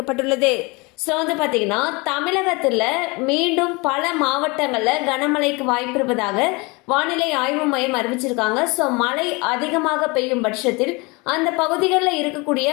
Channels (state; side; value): quieter; right; 26.8 dB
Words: ஸோ பார்த்தீங்கன்னா தமிழகத்தில் மீண்டும் பல மாவட்டங்களில் கனமழைக்கு வாய்ப்பு இருப்பதாக வானிலை ஆய்வு மையம் அறிவிச்சிருக்காங்க. ஸோ மழை அதிகமாக பெய்யும் பட்சத்தில் அந்த பகுதிகளில்